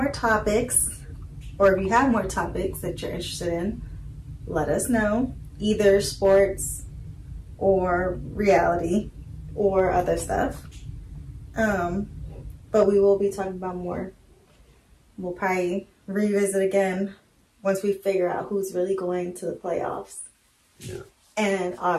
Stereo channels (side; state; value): both; identical; correlation 1.00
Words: topics, or if you have more topics that you're interested in, let us know. Either sports or reality or other stuff. But we will be talking about more. We'll probably revisit again once we figure out who's really going to the playoffs. Yeah. And